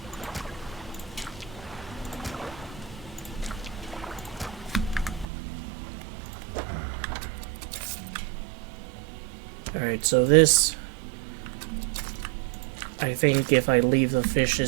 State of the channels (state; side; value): drops out; left; at 5.2 s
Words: Alright, so this, I think if I leave the